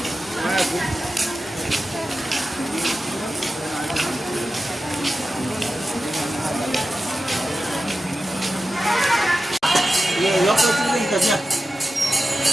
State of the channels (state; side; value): normal; both; correlation 0.93